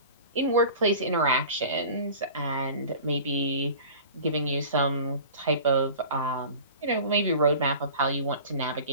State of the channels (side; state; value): both; inverted; correlation -0.39